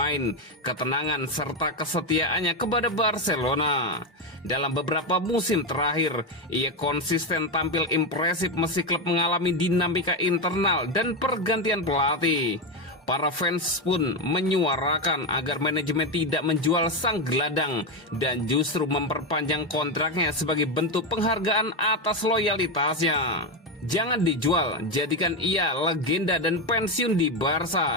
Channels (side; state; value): both; normal; correlation 0.10